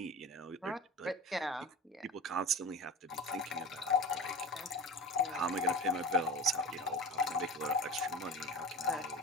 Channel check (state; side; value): normal; both; correlation 0.33